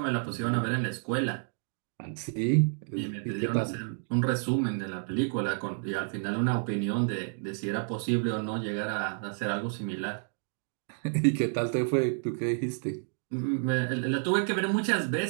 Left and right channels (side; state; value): left; silent; digital silence